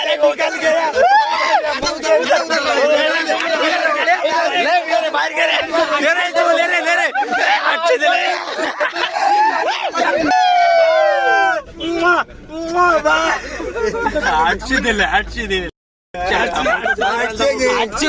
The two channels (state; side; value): identical; both; correlation 1.00